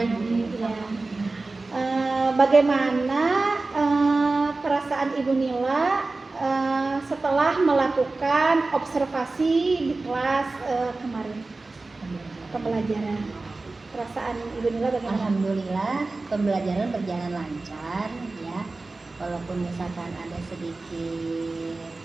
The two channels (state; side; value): quieter; left; 3.4 dB